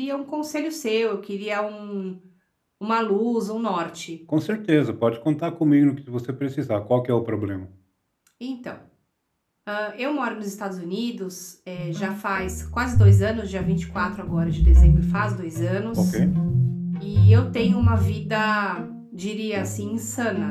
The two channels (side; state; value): both; identical; correlation 1.00